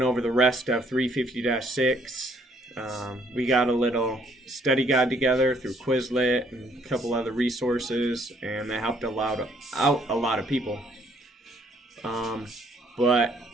over the rest of 350-6. We got a little study guide together through Quizlet and a couple other resources, and that helped out a lot of people. But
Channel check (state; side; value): normal; both; correlation 0.65